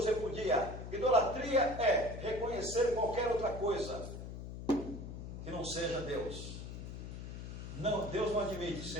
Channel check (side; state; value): left; noise; hum, 9 dB below the sound